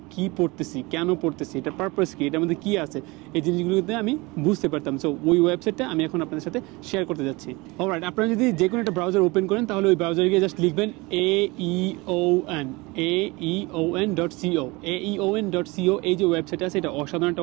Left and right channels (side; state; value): left; quieter; 24.3 dB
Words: কী পড়তেছি, কেন পড়তেছি, এটার পারপাস কী, এটার মধ্যে কী আছে, এই জিনিসগুলোতে আমি বুঝতে পারতাম। সো ওই ওয়েবসাইটটা আমি এখন আপনাদের সাথে শেয়ার করতে যাচ্ছি। অলরাইট, আপনারা যদি যে কোনো একটা ব্রাউজার ওপেন করেন তাহলে ওই ব্রাউজারে গিয়ে জাস্ট লিখবেন aeon.co। aeon.co এই যে ওয়েবসাইট আছে এটা অসাধারণ